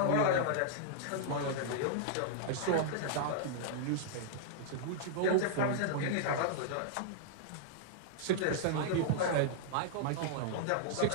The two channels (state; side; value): different; both; correlation -0.01